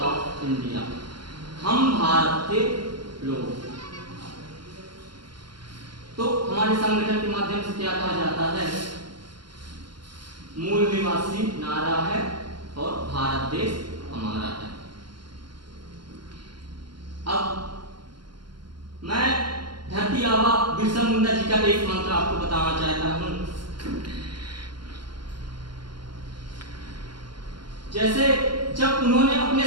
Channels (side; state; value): left; late; 0.72 ms